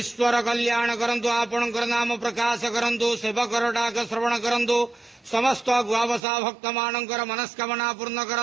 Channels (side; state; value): left; drops out; at 6.2 s